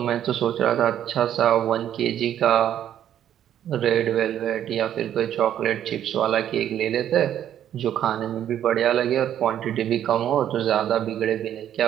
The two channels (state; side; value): quieter; left; 10.6 dB